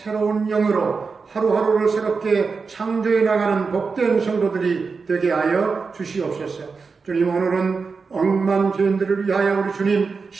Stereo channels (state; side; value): quieter; left; 4.8 dB